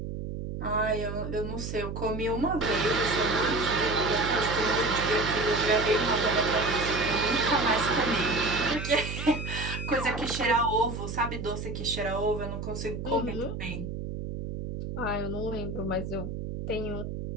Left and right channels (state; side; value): noise; right; hum, 6 dB below the sound